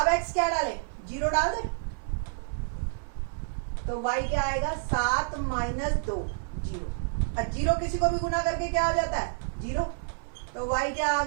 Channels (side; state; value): left; silent; 57 dB below the other